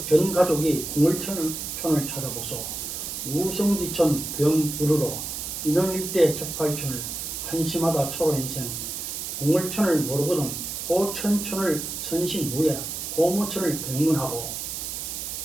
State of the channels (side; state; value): right; noise; hiss, 5 dB below the sound